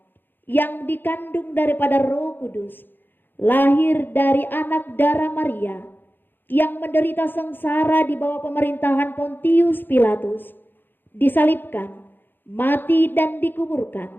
yang dikandung daripada Roh Kudus, lahir dari anak darah Maria, yang menderita sengsara di bawah pemerintahan Pontius Pilatus, disalibkan, mati dan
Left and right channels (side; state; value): right; late; 0.095 ms